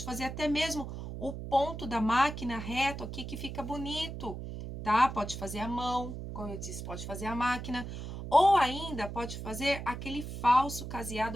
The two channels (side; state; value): right; noise; hum, 8 dB below the sound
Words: fazer até mesmo o ponto da máquina reto aqui, que fica bonito, tá? Pode fazer à mão, como eu disse, pode fazer à máquina. Ou ainda pode fazer aquele falso caseado